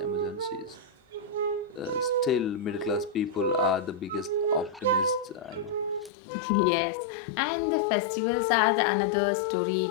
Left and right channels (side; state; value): right; drops out; at 6.1 s